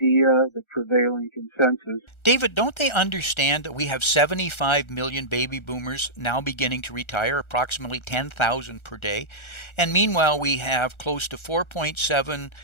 the prevailing consensus. David, don't they understand that we have 75 million baby boomers now beginning to retire, approximately 10,000 per day? And meanwhile, we have close to $4.7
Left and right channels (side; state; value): right; late; 1.4 ms